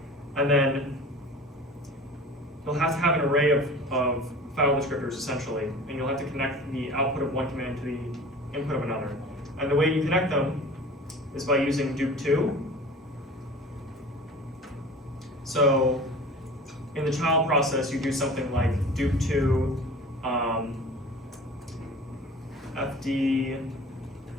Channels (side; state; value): both; normal; correlation 0.40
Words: And then you'll have to have an array of file descriptors essentially, and you'll have to connect the output of one command to the input of another. And the way you connect them is by using dup2. So in the child process, you do something like dup2 FD,